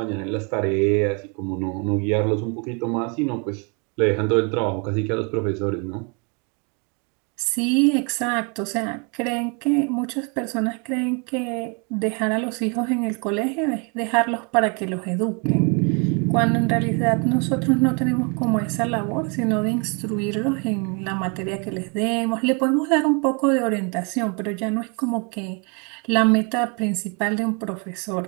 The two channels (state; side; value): quieter; left; 34.2 dB